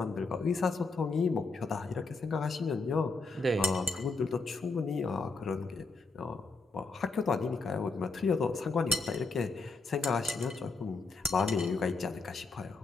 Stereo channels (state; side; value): quieter; right; 3.9 dB